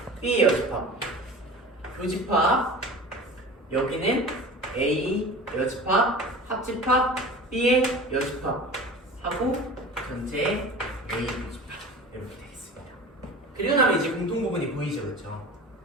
B의 여집합, 교집합, 여기는 A 여집합, 합집합, B의 여집합 하고 전체 A 교집합 이렇게 되겠습니다. 그리고 나면 이제 공통 부분이 보이죠, 그렇죠?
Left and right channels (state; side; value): normal; both; correlation 0.36